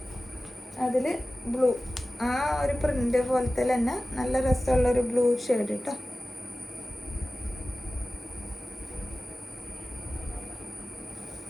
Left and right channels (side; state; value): both; normal; correlation 0.96